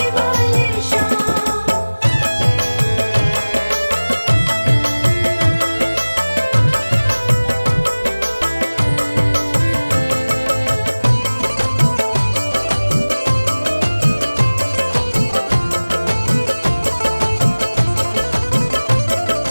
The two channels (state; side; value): inverted; both; correlation -1.00